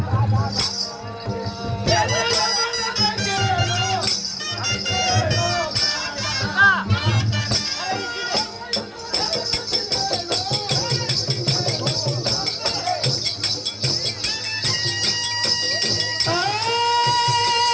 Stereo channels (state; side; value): identical; both; correlation 1.00